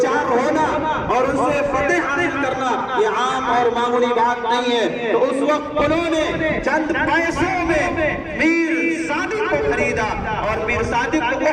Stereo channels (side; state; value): both; identical; correlation 1.00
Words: ہونا اور ان سے فتح حاصل کرنا یہ عام اور معمولی بات نہیں ہے، تو اس وقت انہوں نے چند پیسوں میں میر صادق کو خریدا اور میر صادق کو